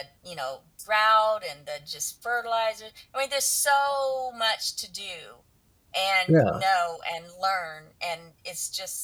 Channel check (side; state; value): both; identical; correlation 1.00